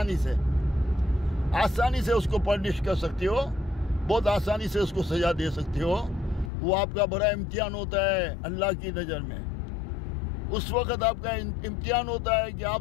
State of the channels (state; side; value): drops out; right; at 6.5 s